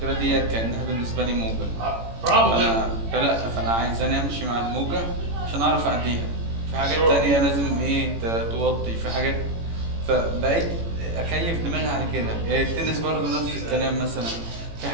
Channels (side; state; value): left; late; 18 ms